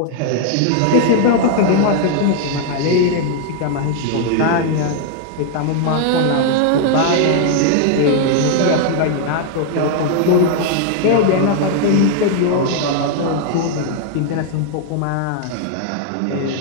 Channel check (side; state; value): both; different; correlation 0.00